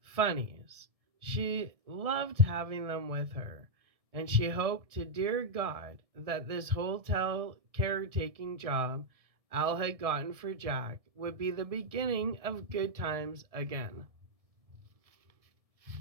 funnies. She loved having them with her, and she hoped to dear God that this hotel caretaking job Al had gotten for Jack would be the beginning of good times again.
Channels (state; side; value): late; left; 1.7 ms